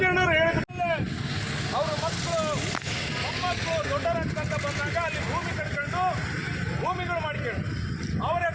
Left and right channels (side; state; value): both; identical; correlation 1.00